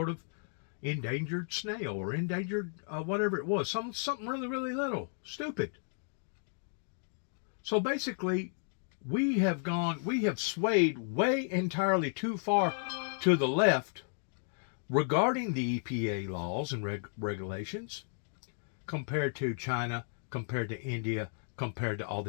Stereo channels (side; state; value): right; silent; 55 dB below the other